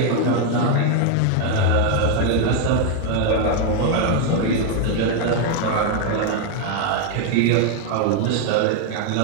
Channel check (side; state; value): both; different; correlation 0.01